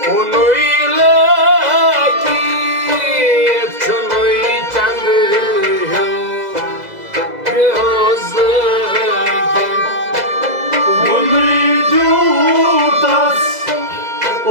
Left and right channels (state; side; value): late; left; 2.0 ms